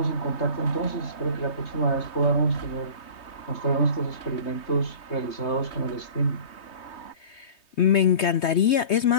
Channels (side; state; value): right; late; 3.2 ms